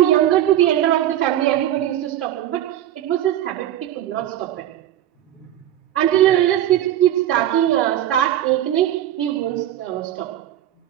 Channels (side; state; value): left; quieter; 12.2 dB